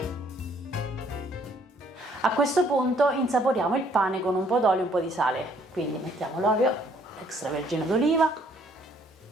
A questo punto insaporiamo il pane con un po' d'olio e un po' di sale, quindi mettiamo l'olio extravergine d'oliva.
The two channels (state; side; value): normal; both; correlation 0.64